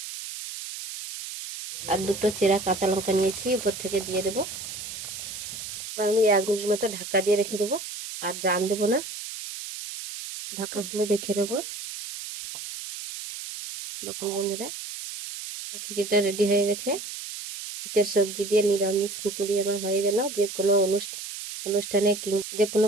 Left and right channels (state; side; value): noise; right; hiss, 9 dB below the sound